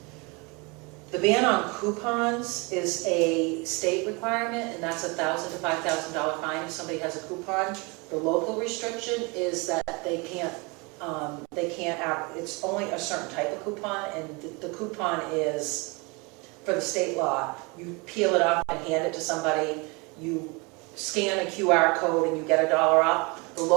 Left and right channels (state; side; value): quieter; left; 28.5 dB